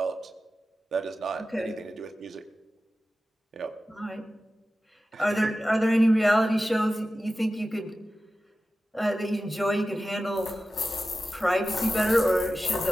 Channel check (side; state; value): both; normal; correlation 0.94